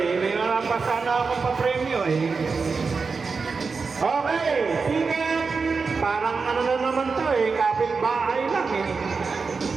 mga pasana akong papremyo Okay, ticket. Parang ano na naman to kapitbahay lang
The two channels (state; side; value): quieter; left; 4.8 dB